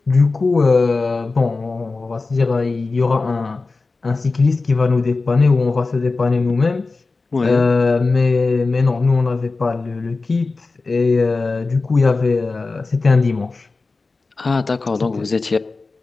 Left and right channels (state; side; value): quieter; right; 3.8 dB